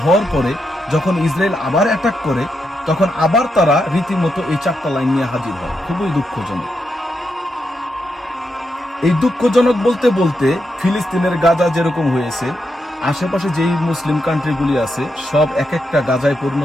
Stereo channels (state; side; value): normal; both; correlation 0.84